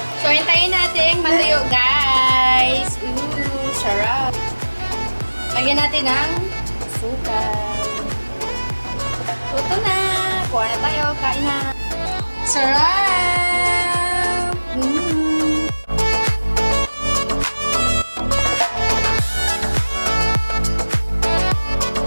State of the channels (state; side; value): inverted; both; correlation -1.00